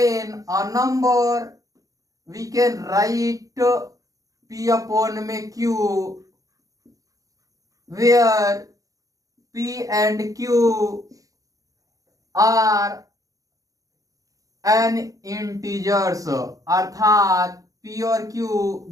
a number we can write p upon में q where p and q are an integers, अर्थात p और q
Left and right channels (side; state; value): left; late; 0.17 ms